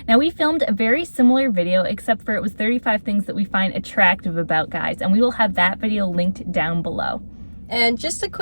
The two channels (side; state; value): both; inverted; correlation -1.00